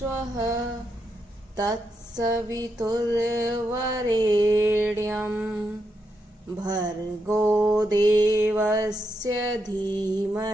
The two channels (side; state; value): both; normal; correlation 0.83